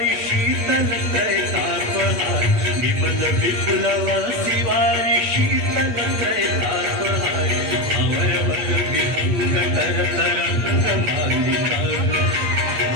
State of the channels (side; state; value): left; late; 8.5 ms